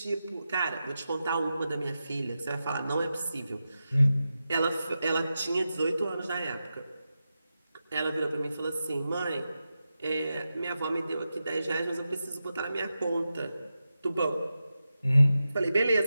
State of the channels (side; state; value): both; inverted; correlation -0.90